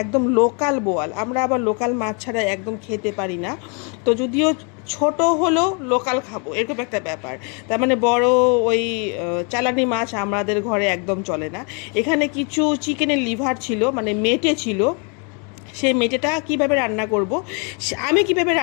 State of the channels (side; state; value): right; quieter; 36.2 dB